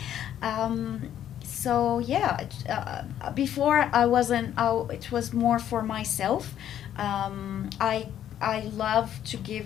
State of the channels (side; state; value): right; quieter; 10.7 dB